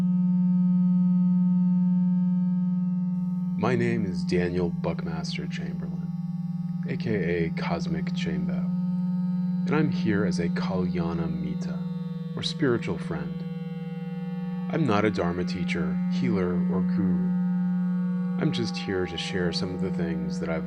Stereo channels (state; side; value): identical; both; correlation 1.00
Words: My name is Daniel Buckmaster Chamberlain, aka Cosmic Chambo, and I'm here as a Kalyana Mita, or spiritual friend. I'm not a Dharma teacher, healer, or guru. I'm just here to share some of the things that